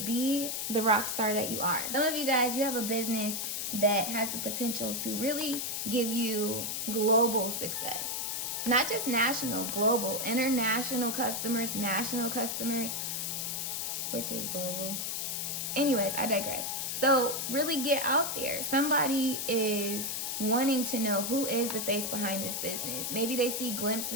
Be the rock star that you are. Some of you guys, you have a business that has the potential to really give you global success. Not just national, global, international customers, national customers, which is global. Anyways, I digress. So really get out there. Somebody is wanting to know who is the face behind this business. Maybe they see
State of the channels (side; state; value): left; noise; hiss, 2 dB below the sound